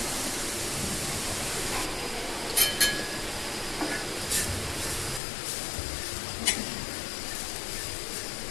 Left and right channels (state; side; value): drops out; right; at 5.2 s